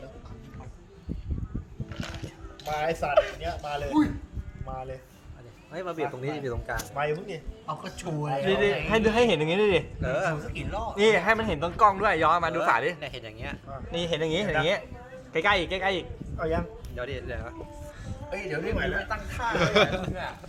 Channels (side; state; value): both; identical; correlation 1.00